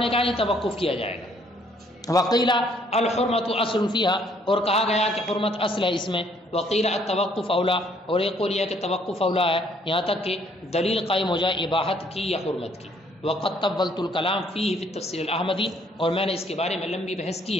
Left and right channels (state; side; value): normal; both; correlation 0.64